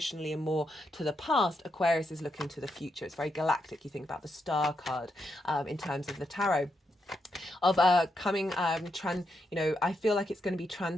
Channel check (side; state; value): both; normal; correlation 0.82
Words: and more to the past, Aquarius is looking to the future. It's very galactic. You think about the star card in terms of the tarot. Of coming I feel like it's going to be